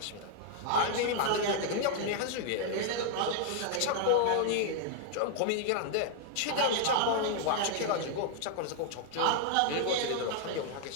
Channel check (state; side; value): different; both; correlation 0.00